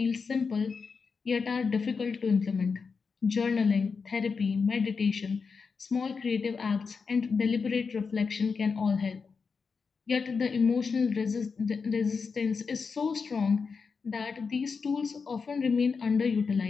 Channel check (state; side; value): quieter; right; 5.2 dB